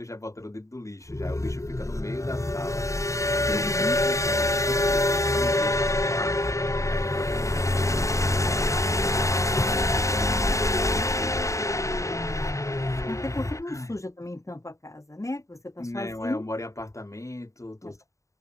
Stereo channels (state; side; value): late; right; 0.15 ms